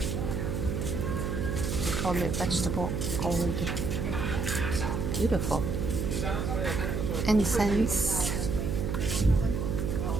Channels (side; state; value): right; noise; hum, 1 dB below the sound